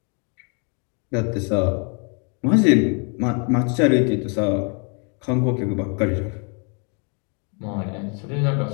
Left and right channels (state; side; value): quieter; right; 36.6 dB